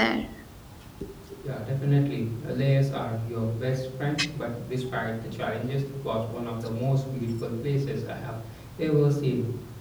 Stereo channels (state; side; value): identical; both; correlation 1.00